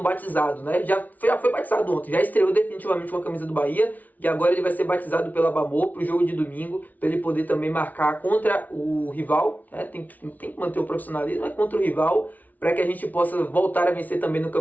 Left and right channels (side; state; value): right; late; 0.076 ms